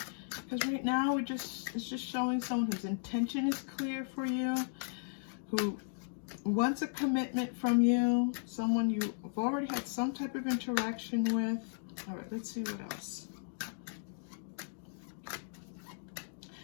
Because right now it's just showing someone whose intention is clear for you, who wants a commitment from you, someone you've already had some type of interaction with. All right, let's see what else.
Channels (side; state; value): right; silent; digital silence